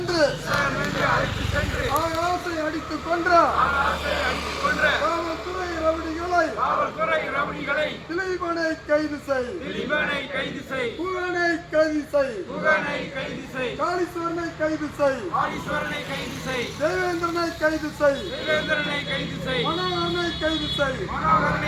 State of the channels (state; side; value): identical; both; correlation 1.00